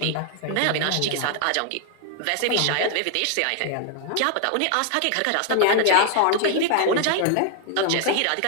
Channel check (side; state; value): both; different; correlation 0.00